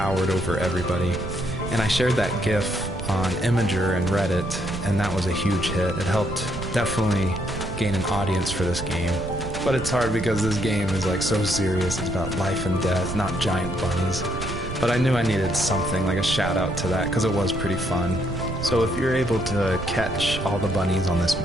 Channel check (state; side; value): noise; right; rumble, 8 dB below the sound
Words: over everybody. And I shared that GIF on Imager and Reddit, and that was a huge hit. It helped definitely gain an audience for this game. But it's hard because this game is like so serious. It's about life and death, not giant bunnies. But I knew I needed something, like a shout out to that, because it was pretty fun. So if you're able to catch all the bunnies on this